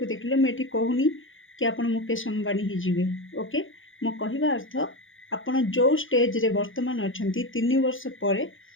देखले मुझे कहूनी कि आप मुकेश अंबानी ही जीवे। ओके मो कहवा अर्थ आपण जो स्टेज रे वर्तमान अच्छा 3 वर्ष पर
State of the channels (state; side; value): late; right; 0.58 ms